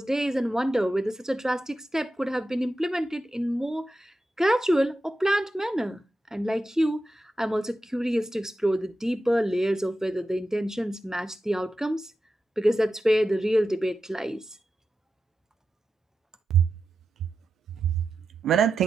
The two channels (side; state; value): both; normal; correlation 0.91